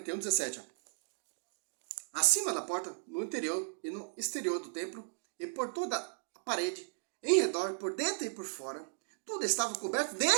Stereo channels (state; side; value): silent; left; digital silence